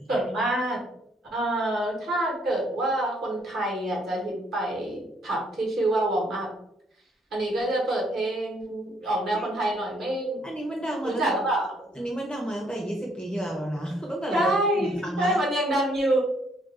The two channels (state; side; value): normal; both; correlation 0.68